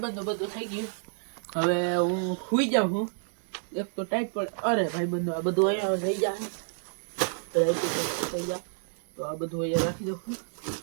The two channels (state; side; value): silent; left; digital silence